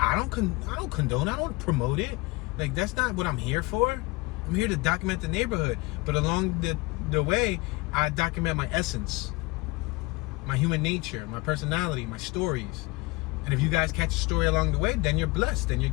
don't condone. I don't promote it. Like, that's not what I'm here for. I'm here to document the neighborhood. But along the way, I document my essence, my human nature, my personality, my stories. And if you guys catch a story along the way, then you're blessed, then you're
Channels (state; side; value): quieter; right; 23.9 dB